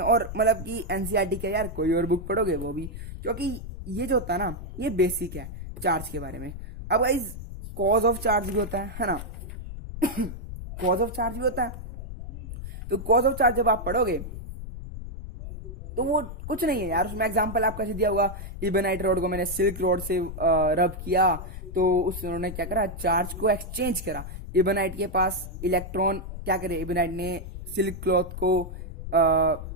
मतलब कि एनसीईआरटी क्या यार, कोई और बुक पढ़ोगे वो भी, क्योंकि ये जो होता है ना, ये बेसिक है चार्ज के बारे में। अब गाइज कॉज ऑफ चार्ज भी होता है ना कॉज ऑफ चार्ज भी होता है। तो कॉज ऑफ चार्ज जब आप पढ़ोगे तो वो कुछ नहीं है यार, उसमें एग्जांपल आपका दिया हुआ, इबोनाइट रोड को मैंने सिल्क रोड से रब किया, तो उन्होंने क्या करा, चार्ज को एक्सचेंज करा। इबोनाइट के पास इलेक्ट्रॉन क्या करे, इबोनाइट ने सिल्क क्लॉथ को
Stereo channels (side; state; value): left; noise; rumble, 9 dB below the sound